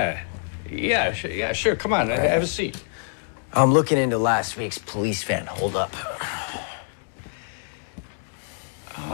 sure. Come on, have a seat. I'm looking into last week's police van holdup.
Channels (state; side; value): silent; right; digital silence